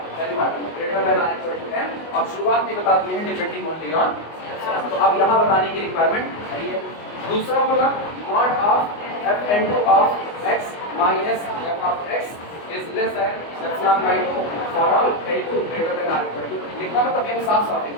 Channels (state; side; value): late; right; 24 ms